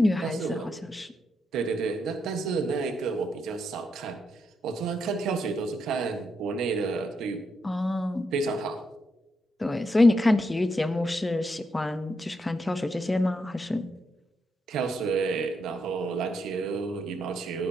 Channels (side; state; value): both; normal; correlation 0.80